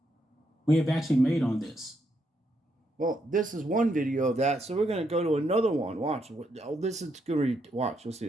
we have actually made on this. Well, this is one video of that, so we're going to go to another one. Watch. This is good. Watch. You'll see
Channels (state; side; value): normal; both; correlation 0.78